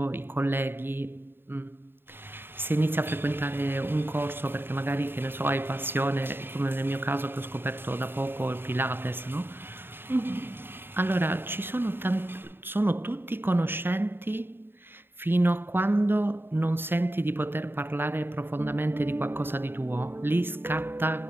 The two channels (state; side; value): late; left; 0.10 ms